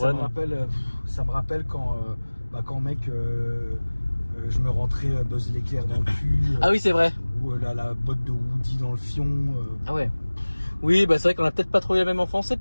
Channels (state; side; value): inverted; both; correlation -1.00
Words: problème? Ça me rappelle quand, mec, je me rentrais Buzz l'éclair dans le cul. Ah oui, c'est vrai. Ou la botte de Woody dans le fion. Ah ouais. Oui, bah c'est vrai qu'on a peut-être pas trouvé la même enfance. C'est